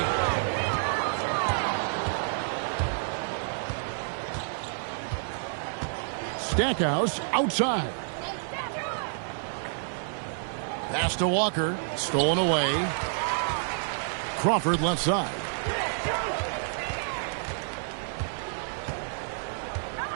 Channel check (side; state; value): left; silent; 56 dB below the other